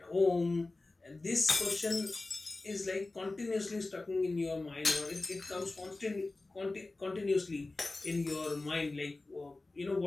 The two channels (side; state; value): right; quieter; 3.2 dB